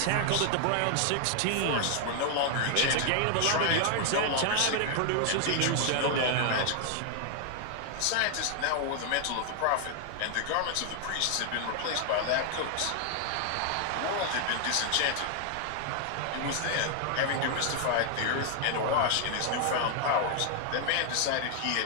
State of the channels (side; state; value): both; different; correlation 0.00